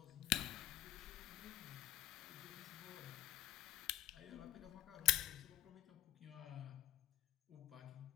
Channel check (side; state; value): right; quieter; 16.1 dB